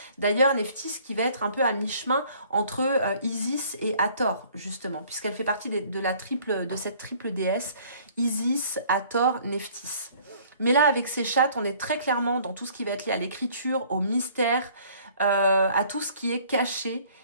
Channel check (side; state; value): both; inverted; correlation -0.56